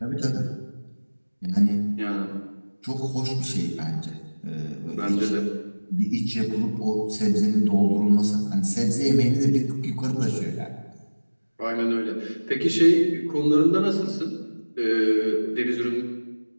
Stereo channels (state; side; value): inverted; both; correlation -1.00